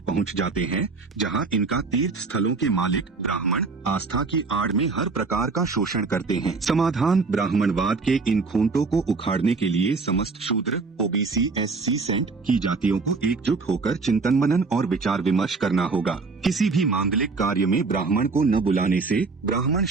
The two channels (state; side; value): quieter; left; 4.2 dB